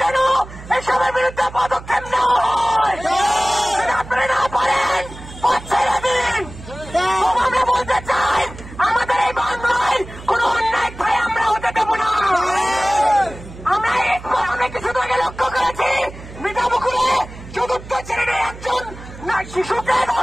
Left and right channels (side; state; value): right; noise; hum, 15 dB below the sound